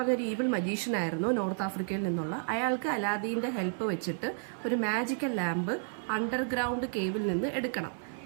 ഈവിൾ മജീഷ്യൻ ആയിരുന്നു, നോർത്ത് ആഫ്രിക്കയിൽ നിന്നുള്ള. അയാൾക്ക് അലാദീൻ്റെ ഹെൽപ്പ് വെച്ചിട്ട് ഒരു മാജിക്കൽ ലാമ്പ് അണ്ടർഗ്രൗണ്ട് കേവിൽ നിന്ന് എടുക്കണം.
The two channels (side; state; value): left; silent; 57 dB below the other